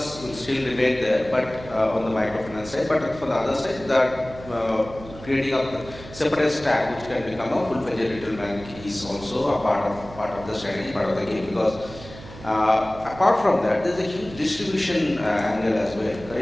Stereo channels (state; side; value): noise; right; hum, 16 dB below the sound